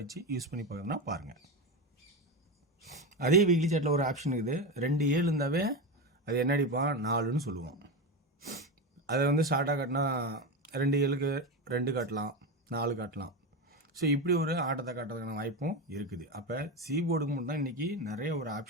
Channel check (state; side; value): normal; both; correlation 0.17